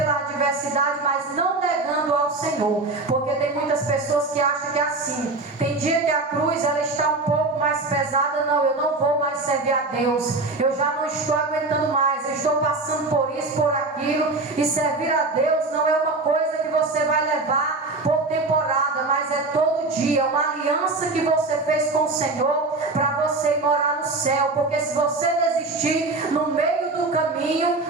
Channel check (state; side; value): quieter; left; 3.3 dB